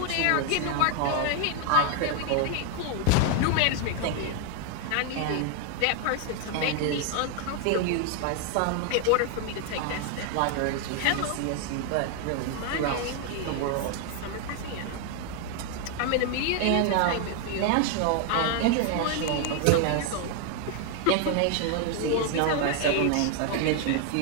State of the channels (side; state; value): both; different; correlation 0.00